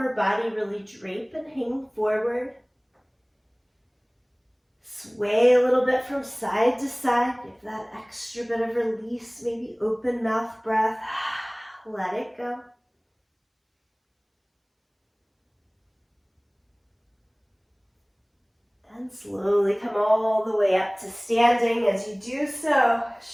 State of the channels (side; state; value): both; identical; correlation 1.00